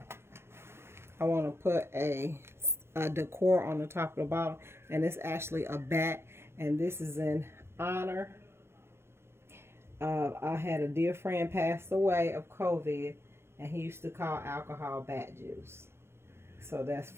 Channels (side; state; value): left; late; 0.12 ms